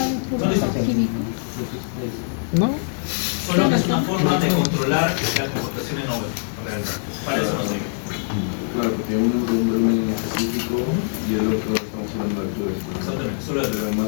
¿No dice? No. Solo que es una forma de controlar la compactación en obra. Para eso no sé. Claro, porque uno es un volumen específico y el otro estamos hablando de altura. Exactamente, solo de pero más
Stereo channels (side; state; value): right; silent; digital silence